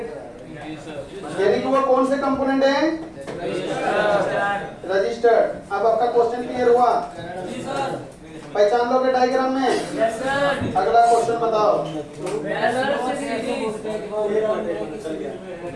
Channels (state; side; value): identical; both; correlation 1.00